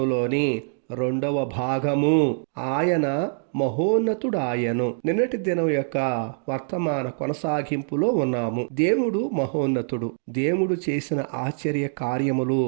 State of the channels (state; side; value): silent; left; digital silence